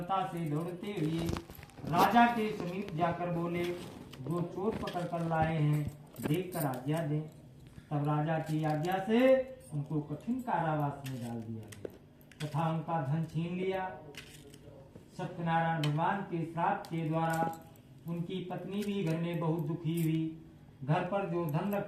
से दौड़ते हुए राजा के समीप जाकर बोले, जो चोर पकड़ कर लाए हैं देखकर आज्ञा दें। तब राजा की आज्ञा से उनको कठिन कारावास में डाल दिया गया तथा उनका धन छीन लिया। सत्यनारायण भगवान के श्राप के द्वारा उनकी पत्नी भी घर में बहुत दुखी हुई। घर पर जो धन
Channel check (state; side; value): identical; both; correlation 1.00